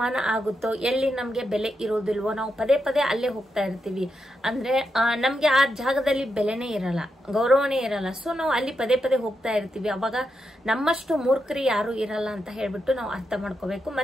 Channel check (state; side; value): normal; both; correlation 0.85